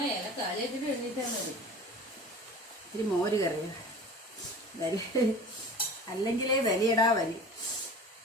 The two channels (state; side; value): normal; both; correlation 0.39